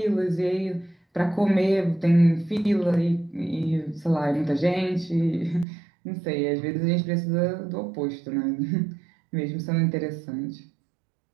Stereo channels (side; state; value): left; drops out; at 5.7 s